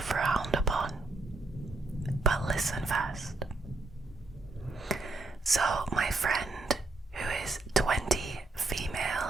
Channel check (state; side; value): quieter; left; 3.2 dB